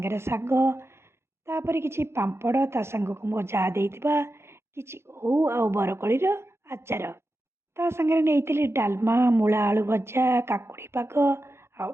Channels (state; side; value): late; left; 0.12 ms